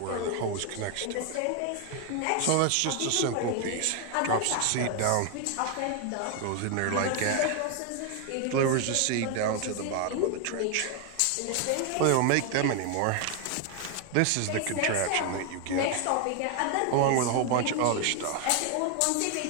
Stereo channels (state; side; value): different; both; correlation 0.01